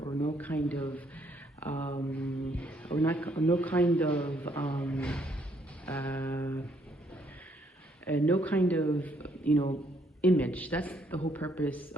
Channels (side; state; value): both; normal; correlation 0.70